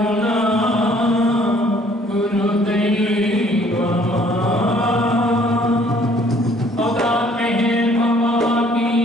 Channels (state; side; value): normal; both; correlation 0.59